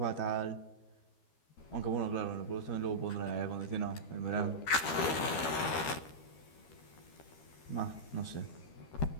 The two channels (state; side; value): late; right; 13 ms